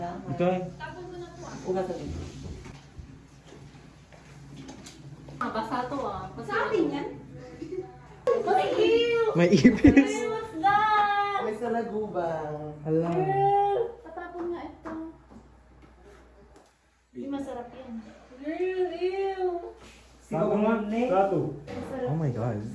Ito eh. Basa to ah. Sa atin yan? May ipis. May salagubang. Hala. Patapon nga ito. Hindi masarap yan. Bago nga. Plato. Oh my God.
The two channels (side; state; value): both; identical; correlation 1.00